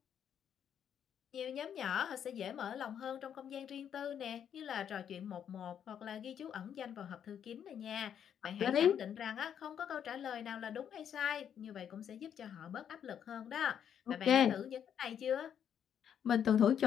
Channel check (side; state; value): right; quieter; 8.8 dB